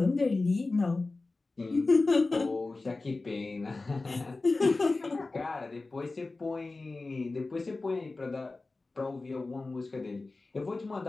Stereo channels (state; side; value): quieter; right; 3.4 dB